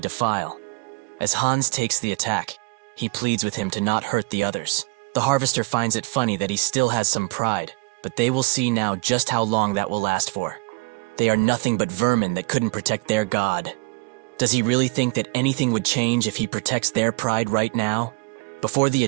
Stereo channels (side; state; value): left; quieter; 28.4 dB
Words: to file. As Hans takes the attack, he pleads with him to not hurt the others. The harvester finds it funny that he still has some pride, but they will see now just how long that will last for. They are nothing but vermin that couldn't protect their god. Does he really think that anything would change if he protects their pride right now? Before the